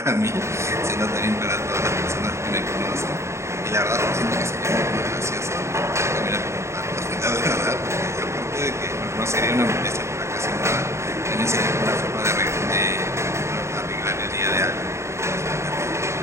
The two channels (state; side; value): late; left; 0.13 ms